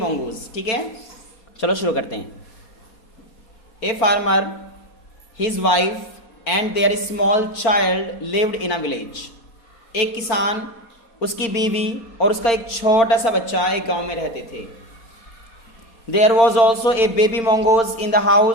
ठीक है, चलो शुरू करते हैं। A farmer, his wife and their small child lived in a village. एक किसान, उसकी बीवी और उसका एक छोटा सा बच्चा एक गांव में रहते थे। There was also a baby mongoose in the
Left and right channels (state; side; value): late; right; 4.2 ms